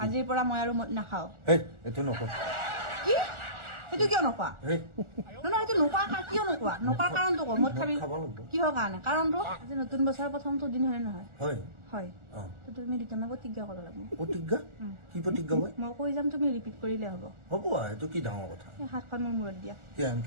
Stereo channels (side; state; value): left; late; 1.4 ms